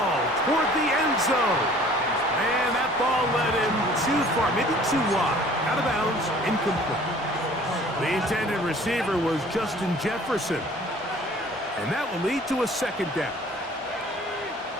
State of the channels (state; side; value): normal; both; correlation 0.51